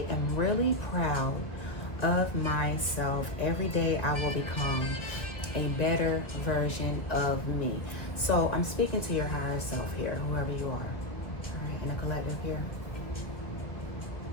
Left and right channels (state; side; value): late; right; 1.4 ms